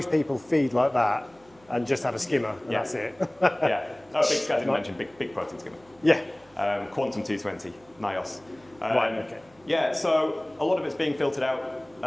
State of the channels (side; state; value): right; noise; hum, 30 dB below the sound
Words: people feed like that and just have a skimmer, and Yeah. that's it. Yeah. Oh, I didn't Right. mention big protein skimmer. Yeah. Quantum 220, NIOS. Right, okay. Yeah, so a lot of it's being filtered out